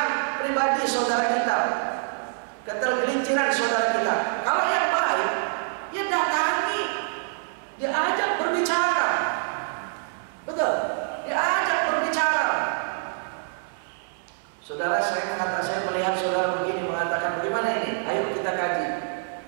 pribadi saudara kita, ketergelinciran saudara kita. Kalau yang baik, ya datangi, diajak berbicara. Betul, diajak berbicara. Saudara, saya melihat saudara begini, mengatakan bagaimana ini? Ayo kita kaji.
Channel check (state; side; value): silent; left; digital silence